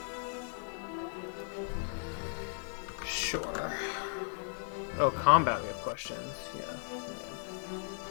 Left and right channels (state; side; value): silent; right; digital silence